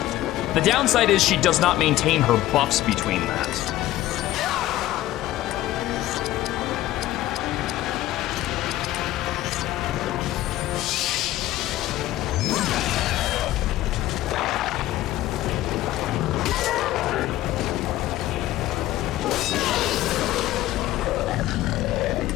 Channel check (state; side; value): quieter; right; 14.9 dB